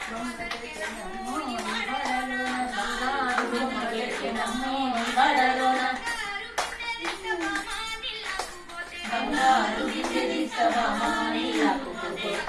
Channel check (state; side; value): identical; both; correlation 1.00